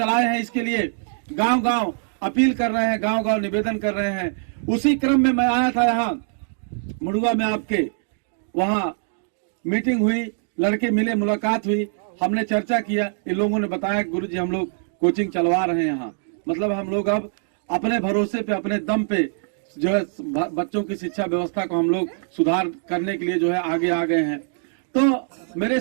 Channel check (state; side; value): silent; left; digital silence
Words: हैं, इसके लिए गांव गांव अपील कर रहे हैं, गांव गांव निवेदन कर रहे हैं। उसी क्रम में मैं आया था यहाँ मुड़ुआ में, आपके वहाँ मीटिंग हुई, लड़के मिले, मुलाकात हुई, हमने चर्चा किया। इन लोगों ने बताया गुरुजी हम लोग कोचिंग चलवा रहे हैं यहाँ, मतलब हम लोग अब अपने भरोसे पे, अपने दम पे जो है बच्चों की शिक्षा व्यवस्था को हम लोग सुधार करने के लिए जो है आगे आ गए हैं। तो मेरे